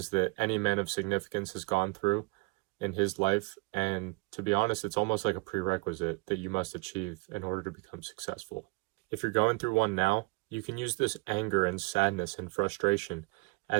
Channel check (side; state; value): left; quieter; 27.8 dB